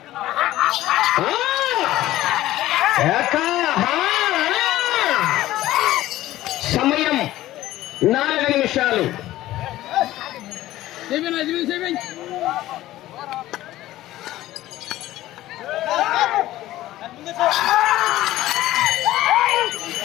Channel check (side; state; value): right; quieter; 15.3 dB